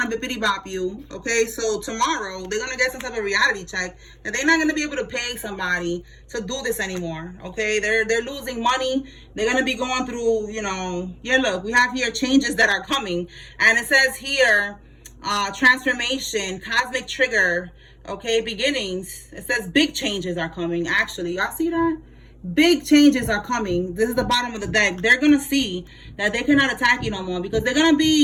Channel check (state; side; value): identical; both; correlation 1.00